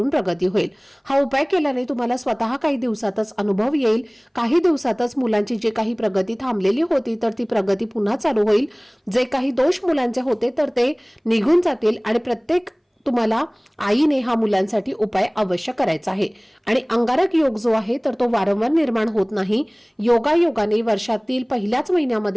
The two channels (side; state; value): both; identical; correlation 1.00